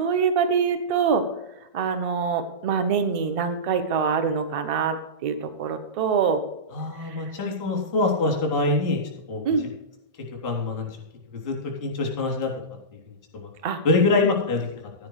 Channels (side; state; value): left; late; 1.6 ms